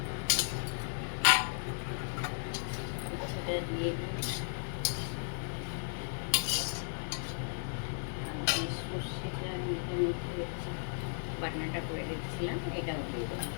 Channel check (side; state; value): right; silent; 54 dB below the other